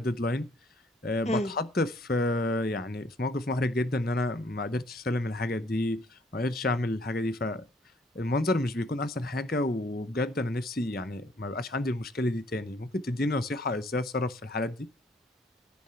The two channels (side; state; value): both; normal; correlation 0.63